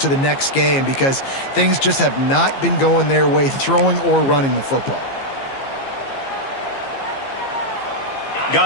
the next game because things just have not been going their way, throwing or running the football.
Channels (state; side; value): late; right; 15 ms